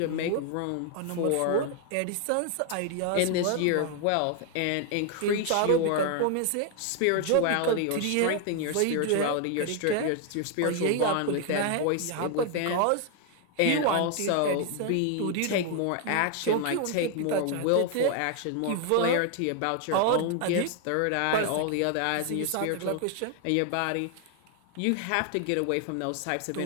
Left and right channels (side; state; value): both; different; correlation 0.00